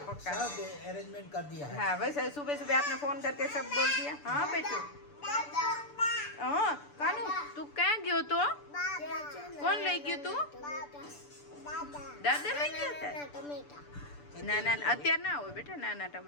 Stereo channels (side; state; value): right; late; 6.9 ms